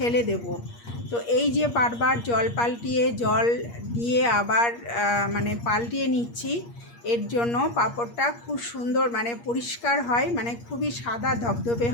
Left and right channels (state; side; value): late; right; 8.5 ms